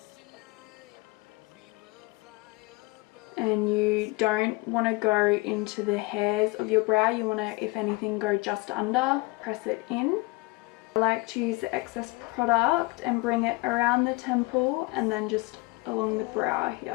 And you don't want to go into the hairs of your brow, you want to, if anything, go just under, press it in. I like to use the excess product and bring it around the temple and then just along the brow here.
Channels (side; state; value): right; quieter; 24.0 dB